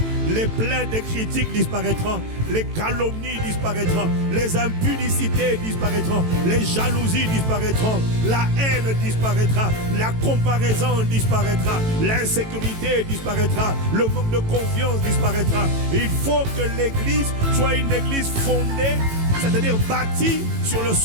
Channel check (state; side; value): late; left; 18 ms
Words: les plaintes et critiques disparaîtront, les calomnies disparaîtront, les impudicités disparaîtront, les jalousies disparaîtront, la haine disparaîtra, la comparaison disparaîtra, l'insécurité disparaîtra, le manque de confiance disparaîtra. Il faut que l'église soit une église fondée, c'est-à-dire bâtie sur le